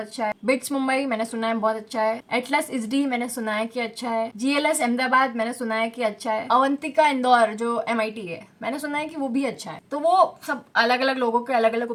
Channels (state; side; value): identical; both; correlation 1.00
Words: है, बिट्स मुंबई मैंने सुना है बहुत अच्छा है, एटलस ISD मैंने सुना है कि अच्छा है, GLS अहमदाबाद मैंने सुना है कि अच्छा है, अवंतिका इंदौर जो MIT है मैंने सुना है कि वो भी अच्छा है। तो वो सब अलग अलग लोगों के अलग अलग